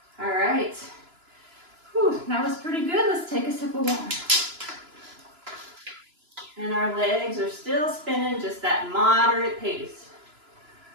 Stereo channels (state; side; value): late; left; 2.9 ms